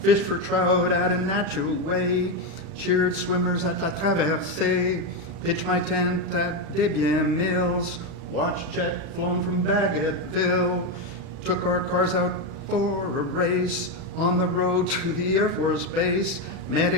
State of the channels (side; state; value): left; late; 36 ms